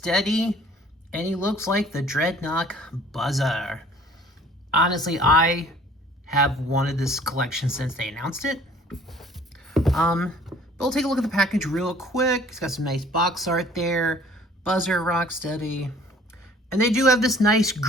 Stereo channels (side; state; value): both; normal; correlation 0.53